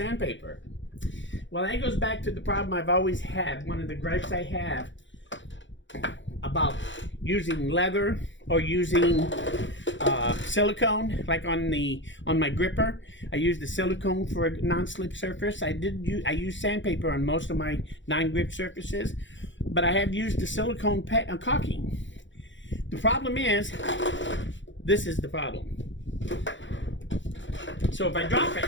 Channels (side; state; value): right; late; 0.54 ms